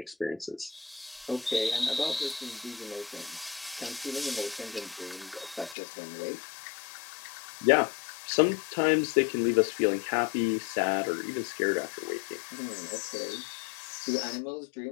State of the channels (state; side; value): drops out; right; at 5.8 s